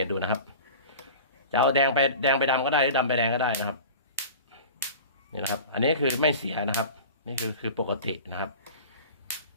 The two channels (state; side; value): inverted; both; correlation -0.37